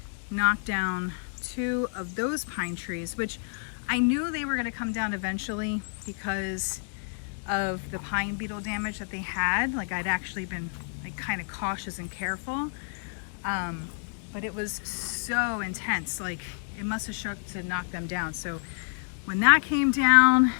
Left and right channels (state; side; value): silent; right; 59 dB below the other